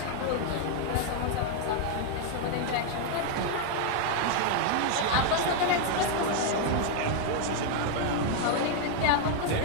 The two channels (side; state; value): both; different; correlation 0.00